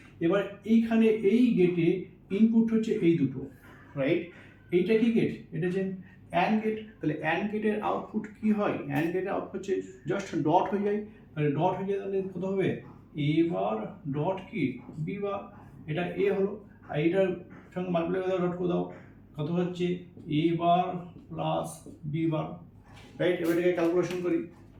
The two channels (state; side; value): identical; both; correlation 1.00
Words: এবার এইখানে এই গেটে ইনপুট হচ্ছে এই দুটো, রাইট। এইটা কি গেট, এটা হচ্ছে অ্যান্ড গেট। তাহলে অ্যান্ড গেটের আউটপুট কি হয়, অ্যান্ড গেটের আউটপুট হচ্ছে জাস্ট ডট হয়ে যায়। তাহলে ডট হয়ে যায়, তাহলে কত হবে এ বার ডট কি বি বার, এটা এ হলো। আর এটার সঙ্গে মাল্টিপ্লাই করে ডট করে দাও, কত হচ্ছে এ বার প্লাস বি বার, রাইট। এবার এটাকে ক্যালকুলেশন করি,